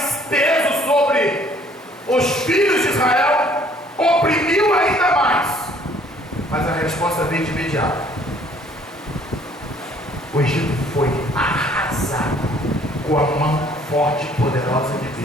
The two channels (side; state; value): both; normal; correlation 0.59